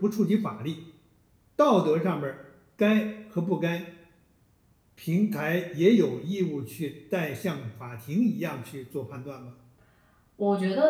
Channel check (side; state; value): both; identical; correlation 1.00